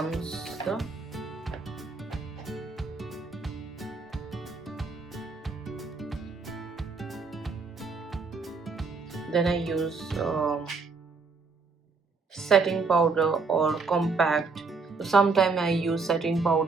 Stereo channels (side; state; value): left; quieter; 4.4 dB